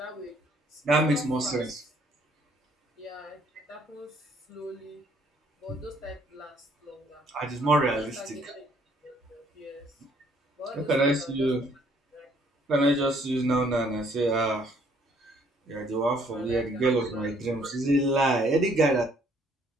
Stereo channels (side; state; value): both; normal; correlation 0.64